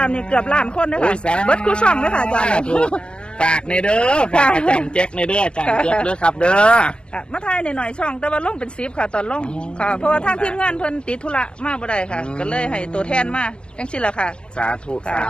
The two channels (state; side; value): late; right; 0.054 ms